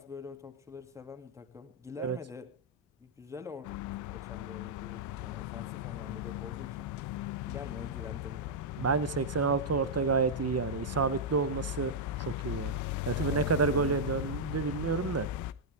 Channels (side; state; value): both; normal; correlation -0.05